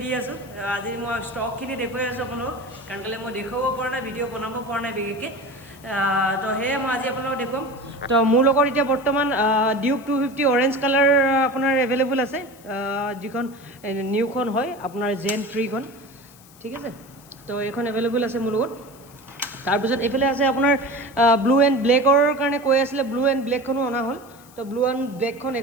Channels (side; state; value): left; noise; hiss, 24 dB below the sound